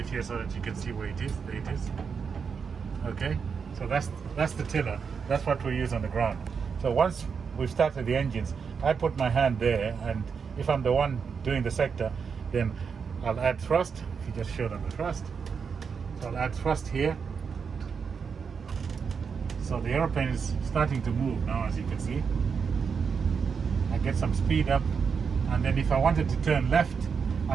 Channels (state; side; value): quieter; left; 6.0 dB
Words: here so that you can see where it is. There it is. Okay, so that's the tiller. That's what we use on the ground. So once we've started the engines, I put my hand there, and if I'm the one doing the sector, then I'll add thrust. If you just show them the thrust. So I'll add thrust here. So the aeroplane is starting to move now, as you can see. I get some speed up, and then if I wanted to turn left,